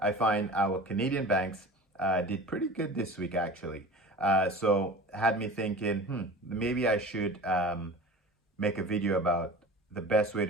find our Canadian banks did pretty good this week actually. So had me thinking, maybe I should make a video about the best way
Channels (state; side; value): normal; both; correlation 0.37